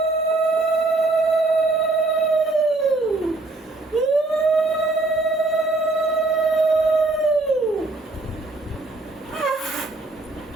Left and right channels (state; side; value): quieter; left; 3.1 dB